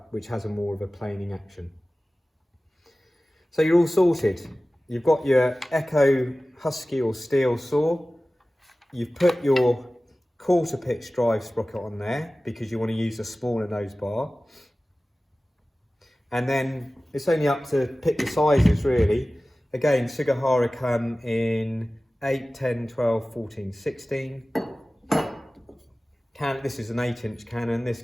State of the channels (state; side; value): normal; both; correlation 0.97